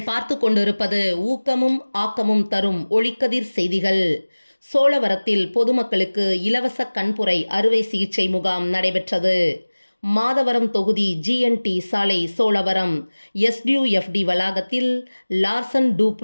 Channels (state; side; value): inverted; both; correlation -1.00